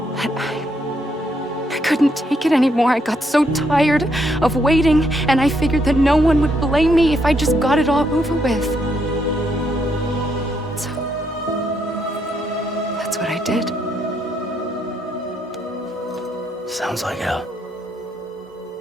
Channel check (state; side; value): normal; both; correlation 0.75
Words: But I couldn't take it anymore. I got so tired of waiting, and I figured that no one would blame me if I just got it all over with. So, that's what I did. Sounds like hell.